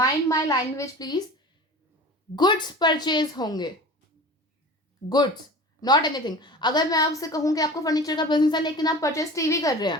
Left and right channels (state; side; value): normal; both; correlation 0.37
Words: my language please, goods purchase होंगे, गुड्स नॉट एनीथिंग। अगर मैं आपसे कहूँ कि आपको फर्नीचर का बिजनेस है लेकिन आप परचेज टीवी कर रहे हैं,